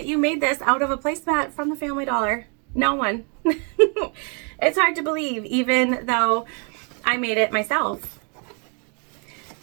you made this out of a placemat from the Family Dollar. No one. It's hard to believe, even though I made it myself.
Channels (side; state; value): left; quieter; 37.3 dB